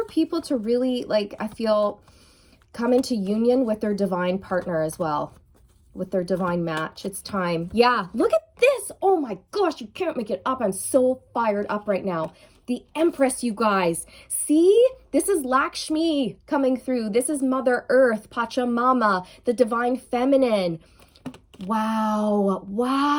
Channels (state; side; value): identical; both; correlation 1.00